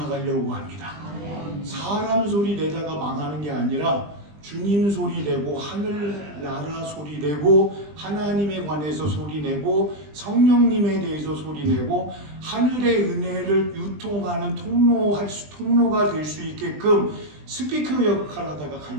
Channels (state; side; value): late; left; 20 ms